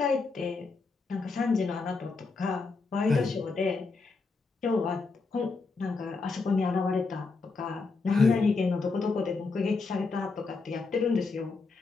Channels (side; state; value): right; quieter; 4.2 dB